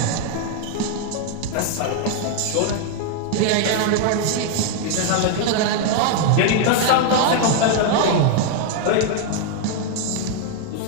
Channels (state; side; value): different; both; correlation 0.00